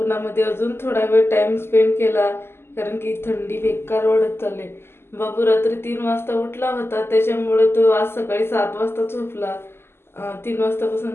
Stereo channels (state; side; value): late; right; 0.12 ms